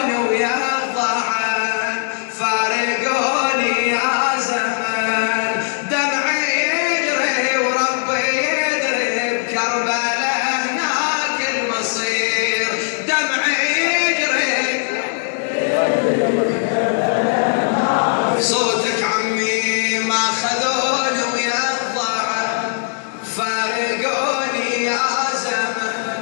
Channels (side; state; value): right; silent; digital silence